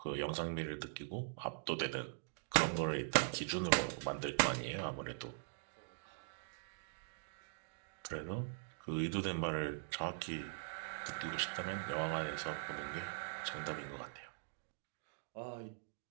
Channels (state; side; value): silent; left; digital silence